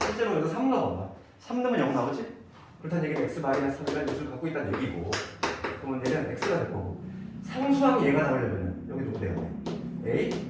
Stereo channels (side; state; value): both; identical; correlation 1.00